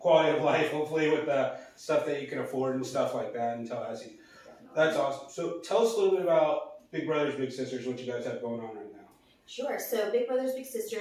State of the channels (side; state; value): both; identical; correlation 1.00